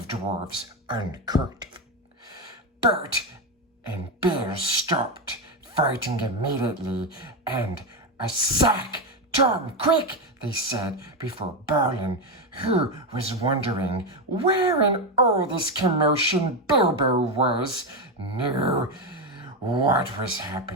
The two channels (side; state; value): both; normal; correlation 0.11